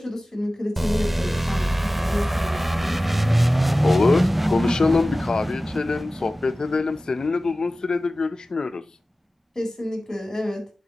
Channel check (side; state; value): both; normal; correlation 0.96